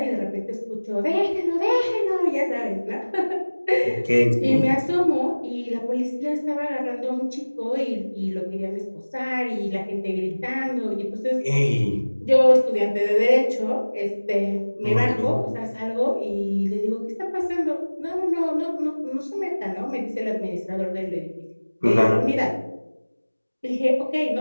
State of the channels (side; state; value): both; inverted; correlation -1.00